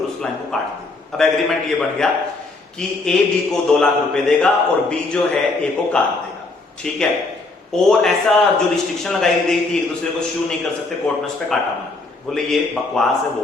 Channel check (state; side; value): quieter; right; 3.4 dB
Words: उस लाइन को काट देगी। अब एग्रीमेंट ये बन गया कि ए बी को 2 लाख रुपए देगा और बी जो है ए को कार देगा, ठीक है। और ऐसा जो रिस्ट्रिक्शन लगाई गई थी एक दूसरे को शू नहीं कर सकते, कोर्ट ने उस पर काटा मार दिया, बोले ये बकवास है,